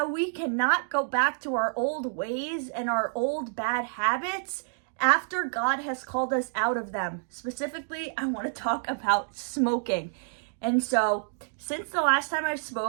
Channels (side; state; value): left; silent; digital silence